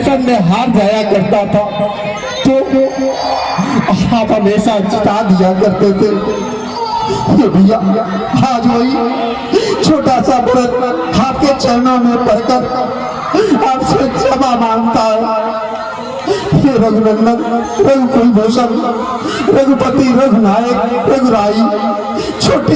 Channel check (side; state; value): both; identical; correlation 1.00